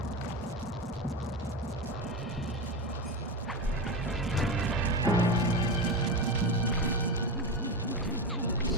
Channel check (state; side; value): normal; both; correlation 0.18